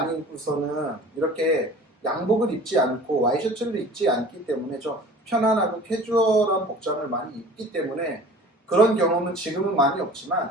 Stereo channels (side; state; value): both; normal; correlation 0.43